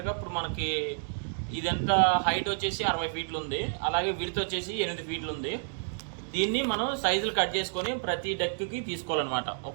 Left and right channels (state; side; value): silent; left; digital silence